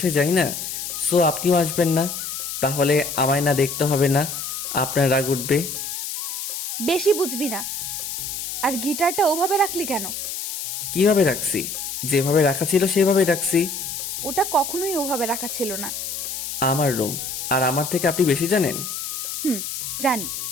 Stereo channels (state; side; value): noise; left; hiss, 5 dB below the sound